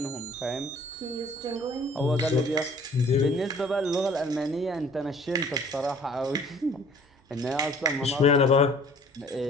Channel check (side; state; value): both; normal; correlation 0.52